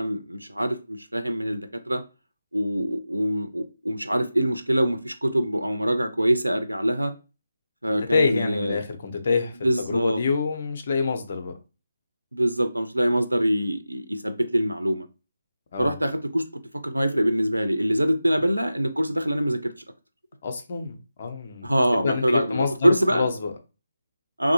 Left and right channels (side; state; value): both; inverted; correlation -0.92